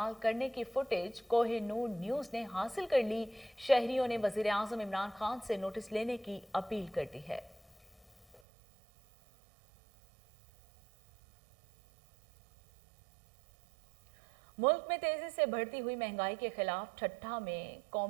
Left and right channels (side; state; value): left; drops out; at 8.4 s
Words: करने की फुटेज कोहिनूर न्यूज़ ने हासिल कर ली। शहरियों ने वज़ीर-ए-आज़म इमरान खान से नोटिस लेने की अपील कर दी है। मुल्क में तेजी से बढ़ती हुई महंगाई के खिलाफ ठट्ठा में